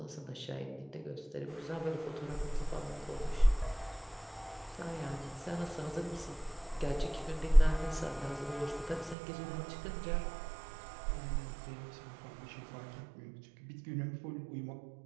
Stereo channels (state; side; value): drops out; left; at 9.2 s